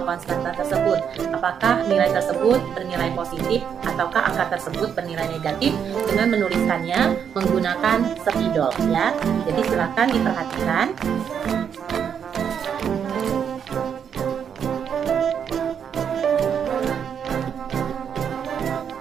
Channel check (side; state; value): left; quieter; 7.8 dB